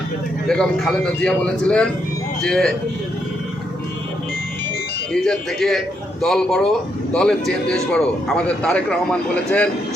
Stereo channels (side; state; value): both; normal; correlation 0.77